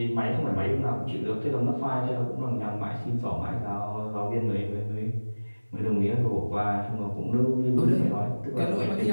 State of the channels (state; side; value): inverted; both; correlation -1.00